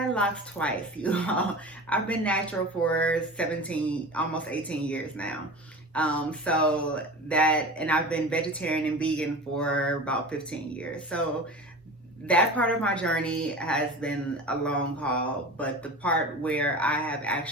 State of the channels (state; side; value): normal; both; correlation 0.33